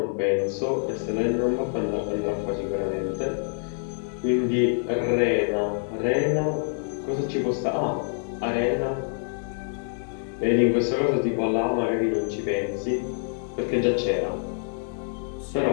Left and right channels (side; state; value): right; silent; digital silence